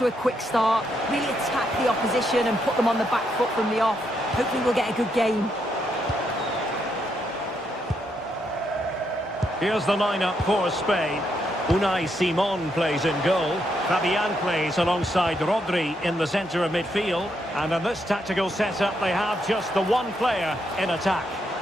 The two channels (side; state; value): both; normal; correlation 0.78